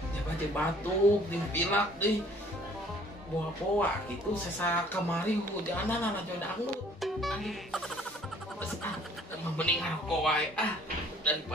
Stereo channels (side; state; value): both; normal; correlation 0.56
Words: Jaga batuk, dimpilak deui. Poa-poa kitu sesa kamari hujanan ana joe dangdut. Terus mending ngaroko wae